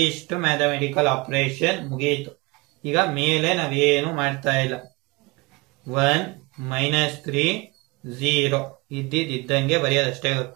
ಮ್ಯಾಥಮೆಟಿಕಲ್ ಆಪರೇಷನ್ ಮುಗಿಯಿತು. ಈಗ ಮೇಲೆ ನಾವೇನು ಮಾಡ್ತಾ ಇಲ್ಲ. 1 -3 0 ಇದ್ದಂಗೆ ಬರೆಯೋದಷ್ಟೇ.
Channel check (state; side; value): quieter; left; 25.4 dB